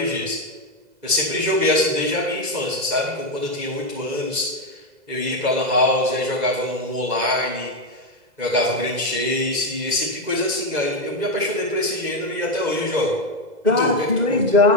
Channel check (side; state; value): left; late; 2.0 ms